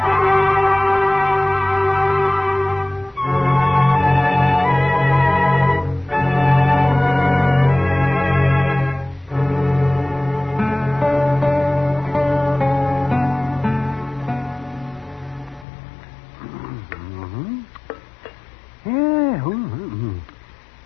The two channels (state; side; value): drops out; right; at 15.7 s